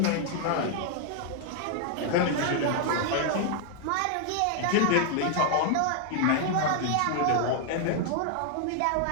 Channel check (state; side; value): different; both; correlation 0.00